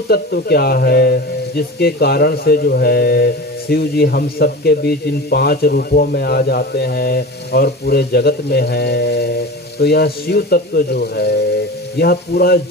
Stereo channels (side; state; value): both; normal; correlation 0.31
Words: तत्व क्या है, जिसके कारण से जो है शिव जी हम सबके बीच इन 5 रूपों में आ जाते हैं और पूरे जगत में है। तो यह शिव तत्व जो है, यह पूरा